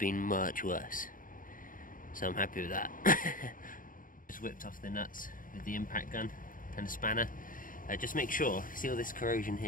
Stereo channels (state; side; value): late; right; 0.40 ms